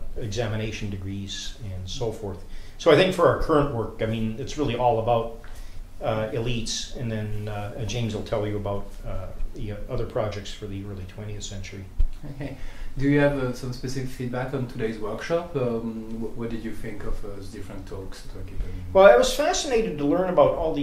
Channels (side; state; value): both; identical; correlation 1.00